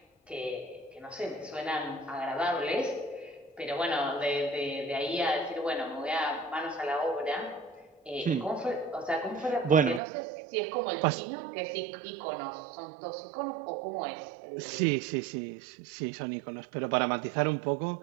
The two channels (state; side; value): drops out; left; at 10.0 s